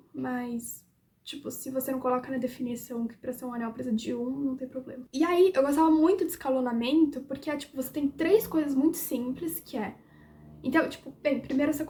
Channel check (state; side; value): identical; both; correlation 1.00